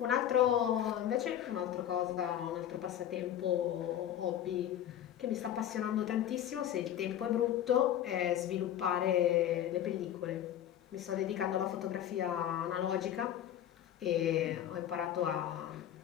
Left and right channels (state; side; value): quieter; right; 10.9 dB